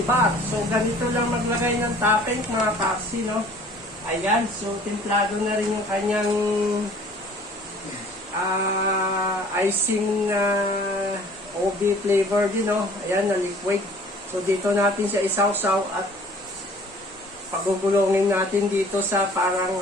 So, ganito lang maglagay ng topping mga paksi, no? Ayan, so templado na rin yung kanyang icing na OB flavor din, no? Ayan, na liquid. So, dito natin siya isawsaw at pagugulongin natin dito sa parang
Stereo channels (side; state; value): both; normal; correlation 0.52